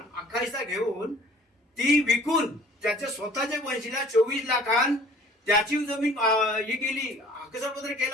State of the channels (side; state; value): both; normal; correlation 0.50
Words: अख्खा हिस्सा घेऊन ती विकून त्याच्या स्वतःच्या वंशीला 24 लाखांत त्याची जमीन ही केली. हक्कसोड पत्र